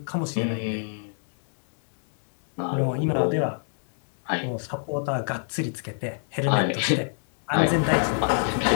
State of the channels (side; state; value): right; silent; digital silence